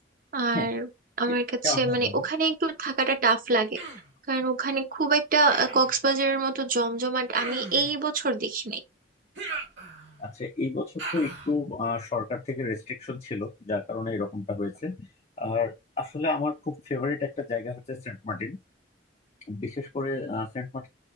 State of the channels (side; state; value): both; normal; correlation 0.03